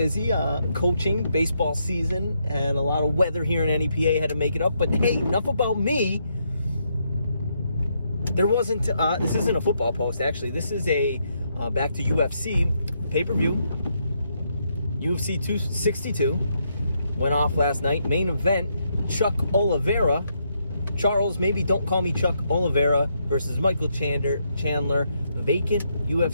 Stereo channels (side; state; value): both; inverted; correlation -0.77